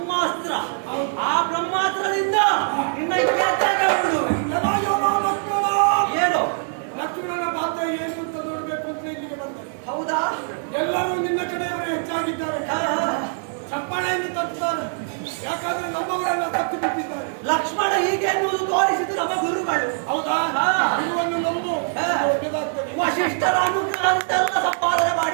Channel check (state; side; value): silent; left; 64 dB below the other